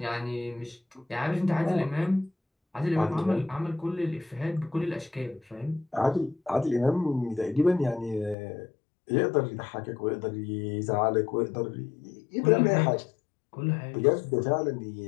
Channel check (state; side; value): drops out; right; at 8.3 s